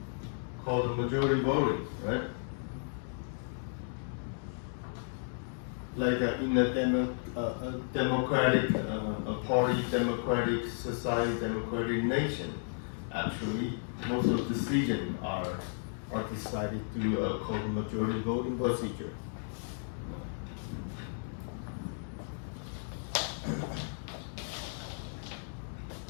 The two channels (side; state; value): right; silent; digital silence